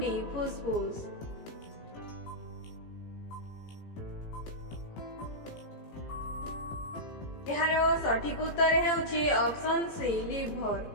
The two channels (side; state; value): right; late; 18 ms